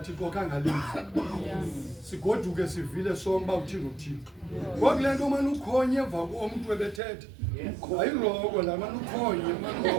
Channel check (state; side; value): drops out; left; at 7.0 s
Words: kangalizwi sigoduke sivile sonke uthini uThixo ngoku le nto manje ukhonye emva komuntu ebethetha ayiroko la manje ukhonye